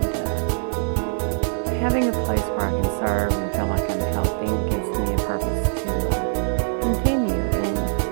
having a place where I can serve and feel like I'm helping gives me a purpose to continue, and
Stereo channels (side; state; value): left; silent; digital silence